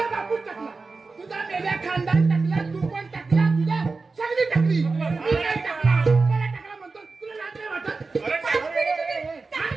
बापू टाकला तुझा मेल्या खानदान टाकला तू पण टाकला तुझ्या सगळी टाकली मी नाही टाकला मला टाकला म्हणतो तुला लाज नाही वाटत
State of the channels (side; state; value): left; quieter; 4.0 dB